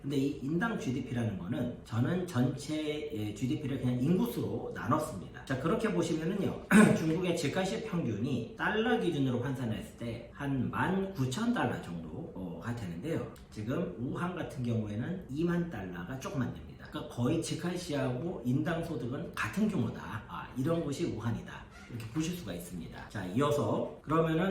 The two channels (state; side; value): identical; both; correlation 1.00